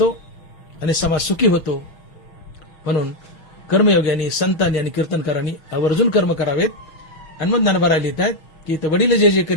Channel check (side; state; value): right; late; 6.2 ms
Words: आणि समाज सुखी होतो. म्हणून कर्मयोग्यांनी, संतांनी आणि कीर्तनकारांनी आवर्जून कर्म करावेत. आणि मग ज्ञानोबा लिहित आहेत की वडील जे जे